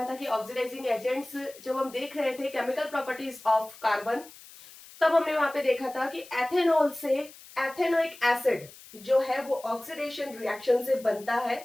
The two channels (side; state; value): left; noise; hiss, 20 dB below the sound